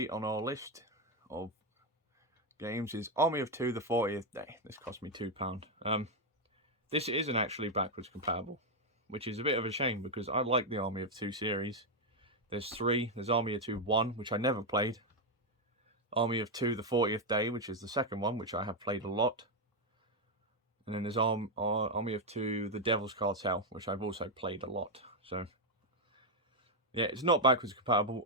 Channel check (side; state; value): both; normal; correlation 0.02